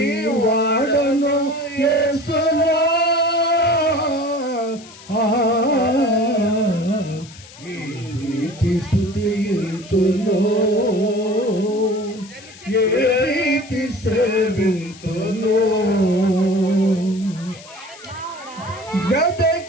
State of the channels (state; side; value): noise; left; hiss, 20 dB below the sound